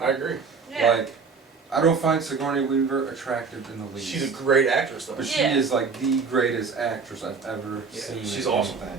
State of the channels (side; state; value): left; quieter; 5.1 dB